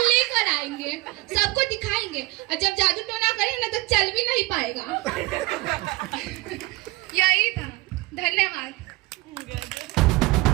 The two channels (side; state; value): left; quieter; 21.5 dB